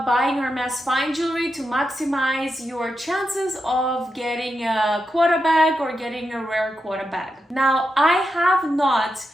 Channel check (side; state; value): both; normal; correlation 0.87